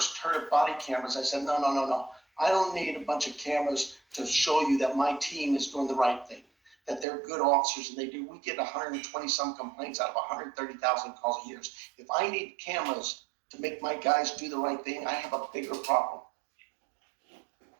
heard of body cameras, I said, no. I don't need a bunch of cameras to show you that my team is doing the right thing, that they're good officers, and we get 120 some complaints out of 130,000 calls a year. If I need cameras to make my guys do the right thing, I have a bigger problem.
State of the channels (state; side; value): drops out; left; at 7.1 s